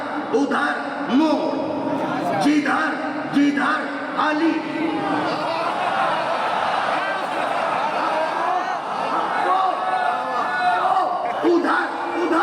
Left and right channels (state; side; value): identical; both; correlation 1.00